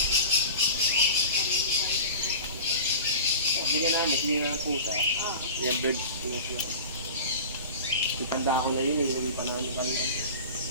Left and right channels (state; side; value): inverted; both; correlation -0.35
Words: Hindi namin, hindi nga pusa. Yung bird. Itanda ko na yun, hindi pa namin kami.